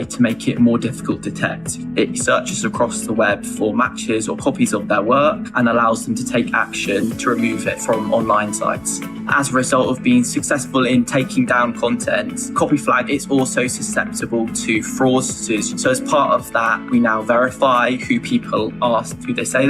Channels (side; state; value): right; noise; hum, 30 dB below the sound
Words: to make it more difficult to detect. It searches across the web for matches or copies of their work and allows them to take action to remove it from online sites. As a result of being successful in taking down content, Copy Flag is also susceptible to fraudsters. So as part of that, we now verify who people are, who they say